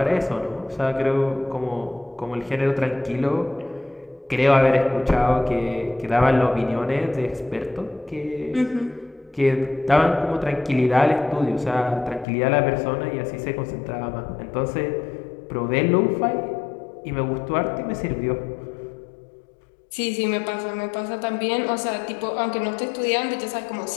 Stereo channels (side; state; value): right; drops out; at 12.2 s